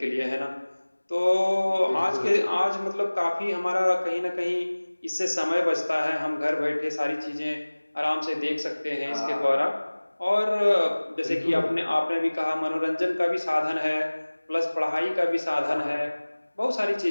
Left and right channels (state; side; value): inverted; both; correlation -1.00